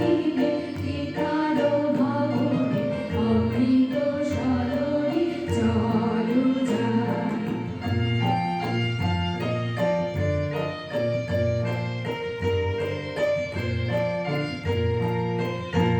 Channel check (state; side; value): identical; both; correlation 1.00